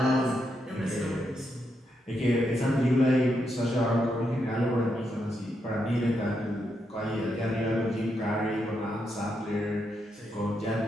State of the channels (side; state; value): both; normal; correlation 0.81